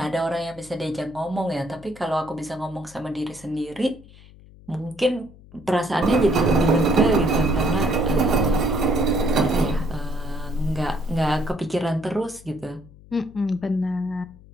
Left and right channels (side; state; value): left; noise; hum, 22 dB below the sound